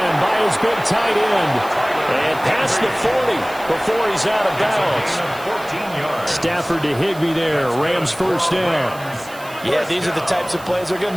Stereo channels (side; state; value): right; noise; hiss, 19 dB below the sound